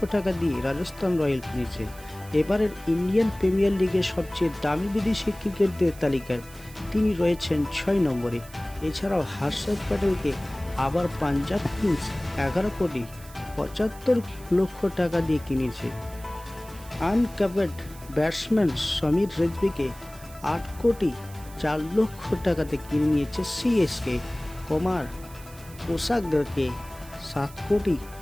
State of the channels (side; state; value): right; noise; hiss, 20 dB below the sound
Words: টাকা দিয়ে রাজস্থান রয়্যাল কিনেছে। এবারের ইন্ডিয়ান প্রিমিয়ার লিগের সবচেয়ে দামি বিদেশি ক্রিকেটদের তালিকায় তিনি রয়েছেন 6 নম্বরে। এছাড়াও হর্ষদ প্যাটেলকে আবার পাঞ্জাব কিংস 11,75,00,000 টাকা দিয়ে কিনেছে। আনক্যাপড ব্যাটসম্যান সমীর রেজভিকে 8,04,00,000 টাকাতে কিনে নিয়েছে সিএসকে। কুমার পোসাগকে